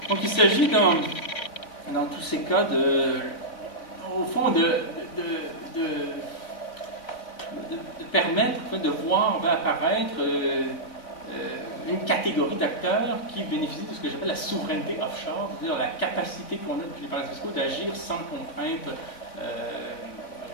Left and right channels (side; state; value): right; late; 3.7 ms